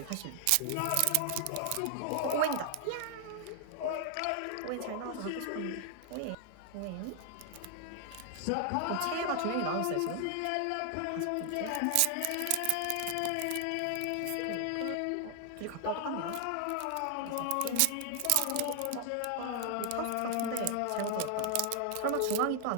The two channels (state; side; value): different; both; correlation 0.00